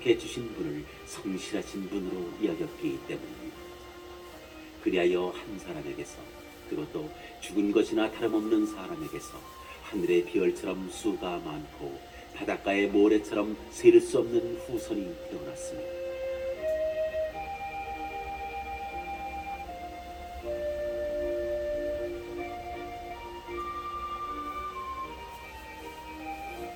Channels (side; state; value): both; identical; correlation 1.00